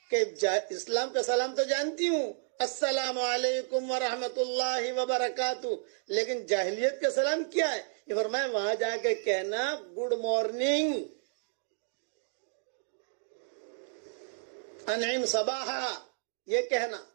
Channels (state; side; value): silent; left; digital silence